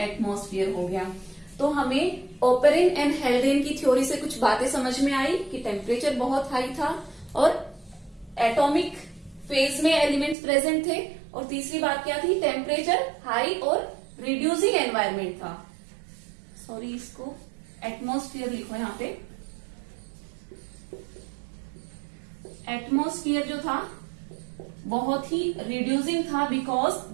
एटमॉस्फेयर हो गया। तो हमें ओपेरिन एंड हेल्डेन की थ्योरी से कुछ बातें समझ में आई कि टेम्परेचर बहुत हाई था और एटॉमिक फेज में एलिमेंट्स प्रेजेंट थे। और तीसरी बात क्या थी? टेम्परेचर हाई और रिड्यूसिंग एनवायरमेंट था। सॉरी, इसको एटमॉस्फेयर लिखो यहां पे। एटमॉस्फेयर जो था बहुत ही रिड्यूसिंग था, because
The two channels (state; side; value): drops out; left; at 10.4 s